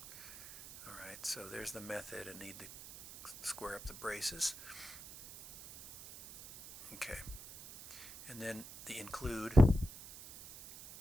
Alright, so there's the method. I need to square up the braces. Okay. And then the include.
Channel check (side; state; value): right; noise; hiss, 15 dB below the sound